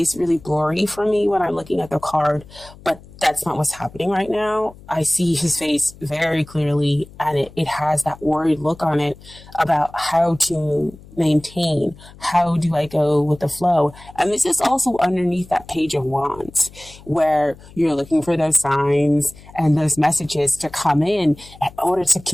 really blurry for me when I'm looking at the card, but that's not what's happening right now. I see his face very clearly, and it has that worried look on it about how to maintain, how do I go with the flow. And this is also underneath that Page of Wands, where you're looking for those signs and those messages to come in order to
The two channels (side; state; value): left; noise; hum, 21 dB below the sound